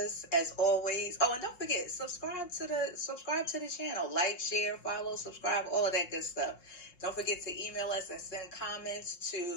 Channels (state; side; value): late; right; 5.6 ms